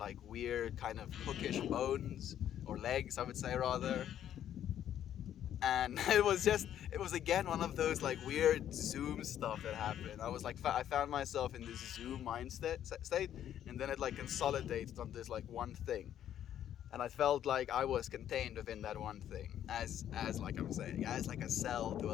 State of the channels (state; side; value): quieter; right; 10.7 dB